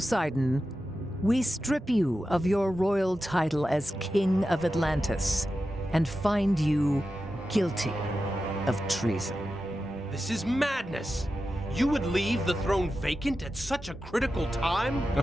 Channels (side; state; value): both; normal; correlation 0.91